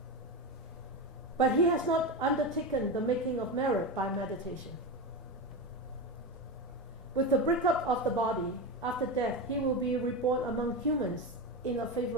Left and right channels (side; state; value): both; normal; correlation 0.18